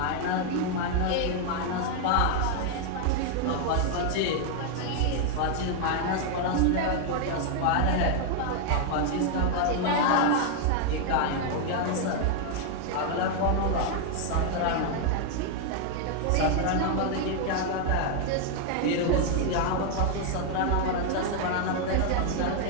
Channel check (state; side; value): different; both; correlation 0.00